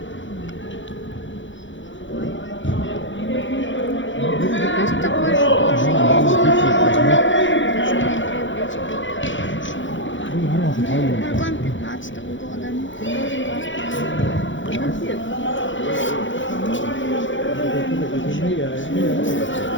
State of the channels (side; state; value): right; late; 0.55 ms